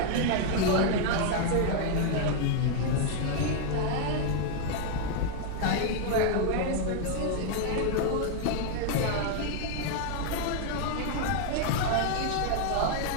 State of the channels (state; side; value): different; both; correlation 0.00